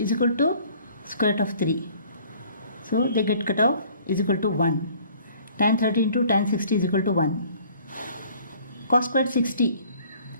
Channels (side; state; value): both; inverted; correlation -0.55